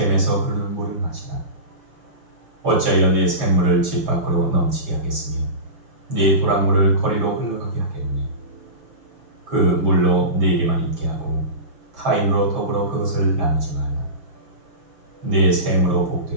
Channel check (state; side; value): late; left; 6.0 ms